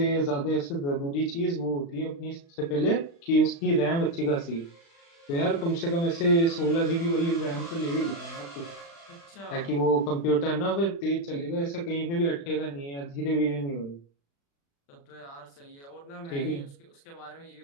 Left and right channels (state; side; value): late; right; 36 ms